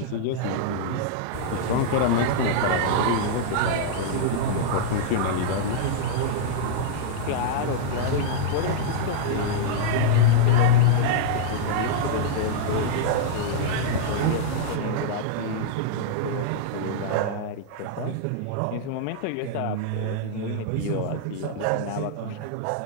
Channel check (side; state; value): both; different; correlation -0.02